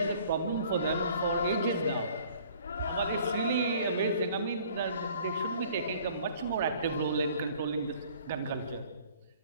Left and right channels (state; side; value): inverted; both; correlation -0.54